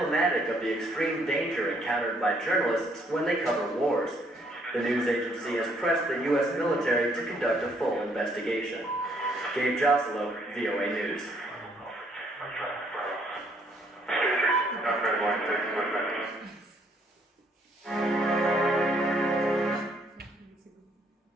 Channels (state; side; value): normal; both; correlation 0.67